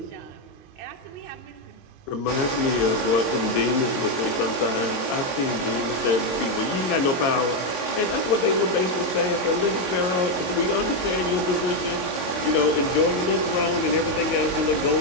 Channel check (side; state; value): right; late; 22 ms